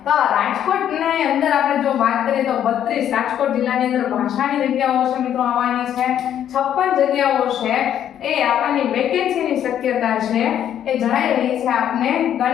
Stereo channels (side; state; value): right; quieter; 10.2 dB